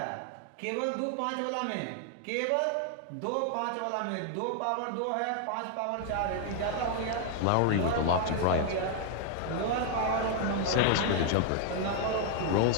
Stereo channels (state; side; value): different; both; correlation 0.00